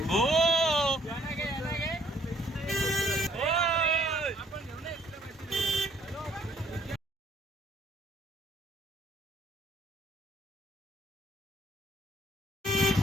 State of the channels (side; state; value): both; normal; correlation 0.64